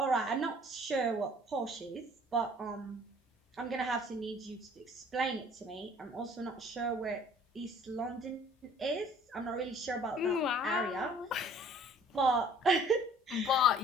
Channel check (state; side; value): normal; both; correlation 0.54